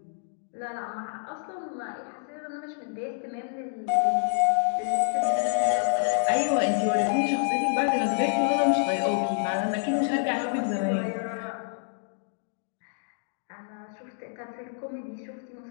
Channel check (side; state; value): right; silent; digital silence